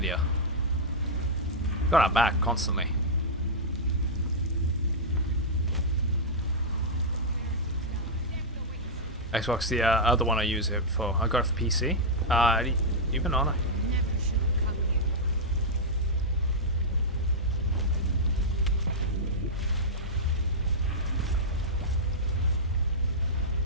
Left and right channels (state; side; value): normal; both; correlation -0.09